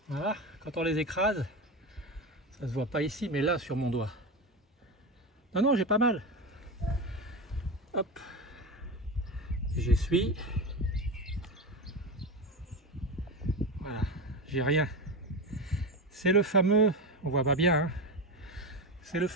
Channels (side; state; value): both; normal; correlation 0.19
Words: Voilà, quand on les écrase, ça se voit pas ici, mais là sur mon doigt. Non, non, j'ai pas mal. Hop, j'essuie. Voilà, j'ai rien. C'est le fameux, on voit pas bien, hein, c'est le